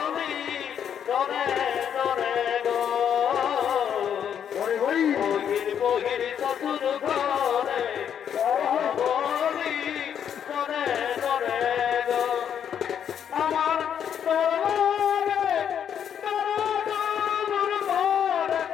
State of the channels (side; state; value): right; quieter; 8.6 dB